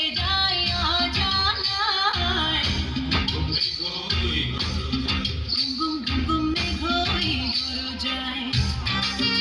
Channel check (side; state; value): both; identical; correlation 1.00